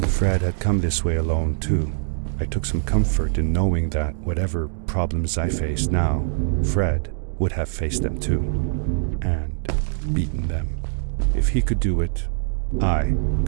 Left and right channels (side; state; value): left; silent; digital silence